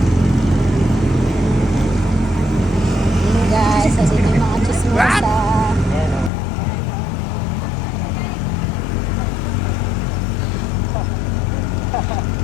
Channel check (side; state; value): right; drops out; at 6.3 s